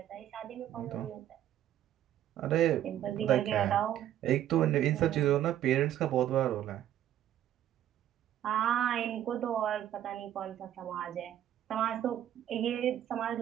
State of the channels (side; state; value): left; quieter; 11.6 dB